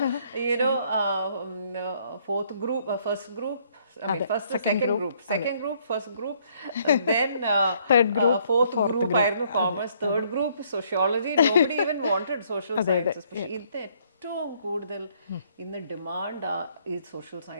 Fourth group, first group, second group, first group, then third group, fourth group ആയിരുന്നു commerce, third group sociology. Nobody even wanted social sciences. പക്ഷേ ഇത് ഏറ്റവും കൂടുതൽ ഇന്ന് ഡിമാൻഡ് ഈ സോഷ്യൽ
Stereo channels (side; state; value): both; inverted; correlation -0.66